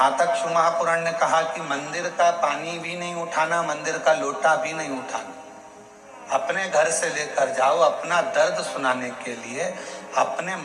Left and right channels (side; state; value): both; identical; correlation 1.00